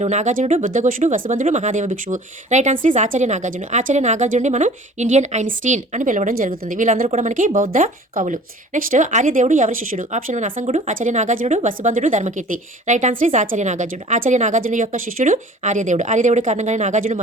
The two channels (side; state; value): both; normal; correlation 0.47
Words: నాగార్జునుడు, బుద్ధఘోషుడు, వసుబంధుడు, మహాదేవ భిక్షువు. రైట్ ఆన్సర్ ఇస్ ఆచార్య నాగార్జునుడిని మనం ఇండియన్ ఐన్స్టీన్ అని పిలవడం జరుగుతుంది. వీళ్ళందరూ కూడా మనకి బౌద్ధ కవులు. నెక్స్ట్, ఆర్యదేవుడు ఎవరి శిష్యుడు? ఆప్షన్ 1 అసంగుడు, నాగభూషణుడు, ఆచార్య నాగార్జునుడు, వసుబంధుడు, Dharmakirti. Right answer is Acharya నాగార్జునుడు. ఆచార్య నాగార్జునుడు యొక్క శిష్యుడు ఆర్యదేవుడు. ఆర్యదేవుడి కారణంగానే నాగార్జునుడు